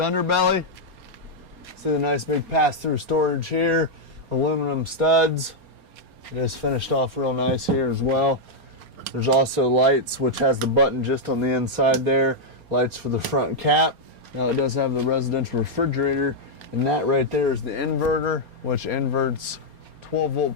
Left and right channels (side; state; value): left; late; 4.3 ms